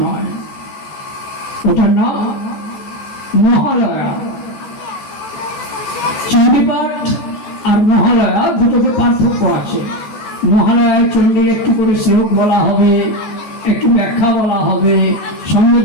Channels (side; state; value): right; late; 14 ms